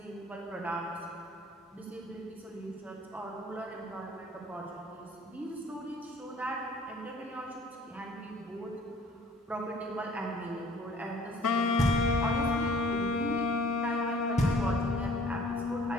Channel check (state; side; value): normal; both; correlation 0.53